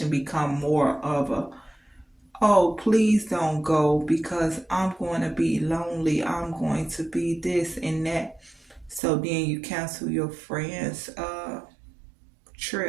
become more of a, oh, please don't go because I'm going to be lonely. I'm going to be this and that. So then you cancel your friend's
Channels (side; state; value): left; drops out; at 9.0 s